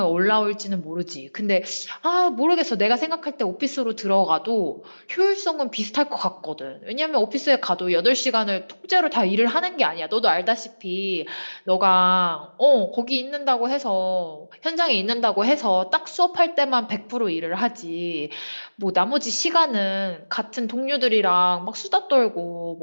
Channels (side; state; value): both; inverted; correlation -1.00